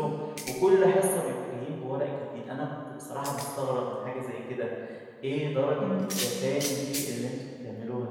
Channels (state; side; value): identical; both; correlation 1.00